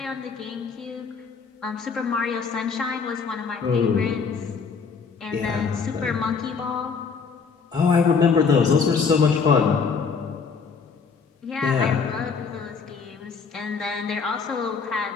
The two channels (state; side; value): quieter; right; 5.4 dB